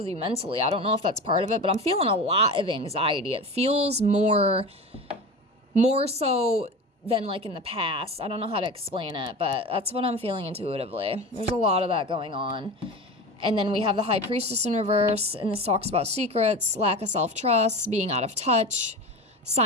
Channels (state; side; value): normal; both; correlation 0.29